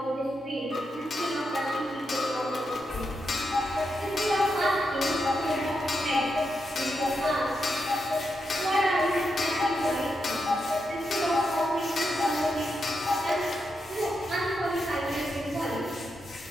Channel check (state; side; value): normal; both; correlation 0.85